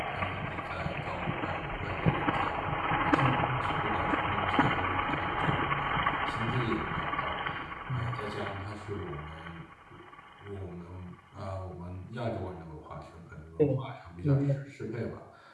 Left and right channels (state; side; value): identical; both; correlation 1.00